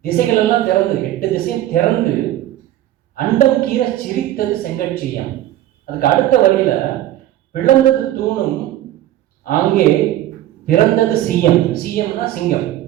திசைகள் எல்லாம் திறந்து, 8 திசையும் திறந்து அண்டம் கீற சிரித்தது செங்கட்சியம். அதுக்கு அடுத்த வழியில பிளந்தது தூணும் அங்கே பிறந்தது சீயம். சீயம்னா சிங்கம்.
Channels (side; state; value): left; quieter; 13.5 dB